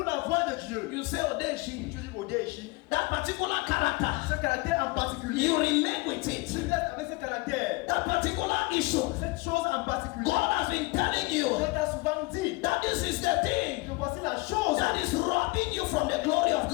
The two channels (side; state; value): right; quieter; 24.4 dB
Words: la voix de Dieu. You say, oh, there she. Tu dis, Odéchi. That particular character, Ce caractère en particulier. you remain with it. Tu restes avec ce caractère. That particular issue, Cette chose en particulier. God has been telling you Dieu t'a souvent dit that this is the thing que voici la chose that is robbing you from the glory of